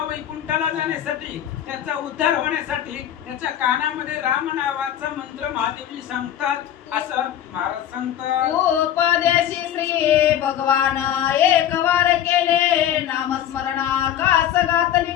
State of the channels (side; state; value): right; quieter; 10.8 dB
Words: वैकुंठाला जाण्यासाठी, त्याचा उद्धार होण्यासाठी त्याच्या कानामध्ये राम नावाचा मंत्र महादेवजी सांगतात असं महाराज सांगतात। उपदेशी श्री भगवान एक वार केले नामस्मरणा